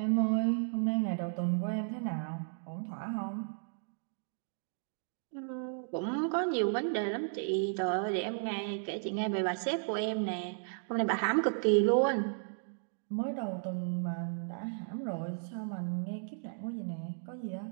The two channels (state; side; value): silent; left; digital silence